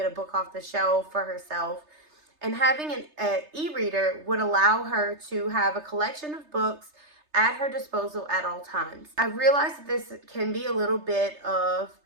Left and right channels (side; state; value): left; late; 3.3 ms